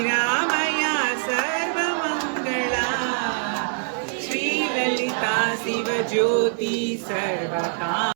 సర్వమంగళ శ్రీలలిత శివజ్యోతి సర్వకామ.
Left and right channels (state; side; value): silent; left; 62 dB below the other